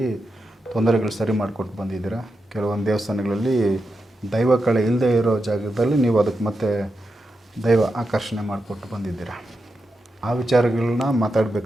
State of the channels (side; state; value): both; normal; correlation 0.88